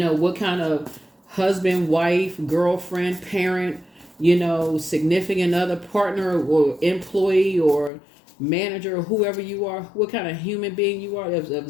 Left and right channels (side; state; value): right; drops out; at 7.9 s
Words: what kind of husband, wife, girlfriend, parent, you know, significant other, partner, or employee, or manager, or whoever you are, what kind of human being you are, of